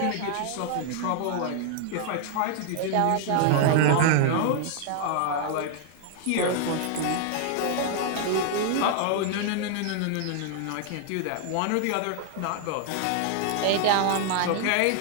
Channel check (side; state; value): both; different; correlation 0.00